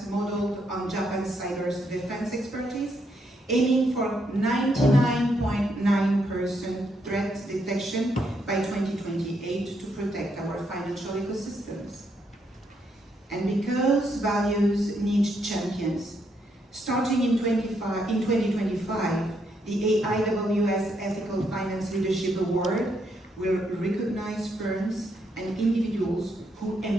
modeled on Japan's cyber defense expertise, aiming for 99.9% threat detection by 2028 to protect our financial ecosystems. And because values need champions, starting in 2025, the AIWS Ethical Finance Leadership Award will recognize firms and individuals who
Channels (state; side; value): normal; both; correlation 0.76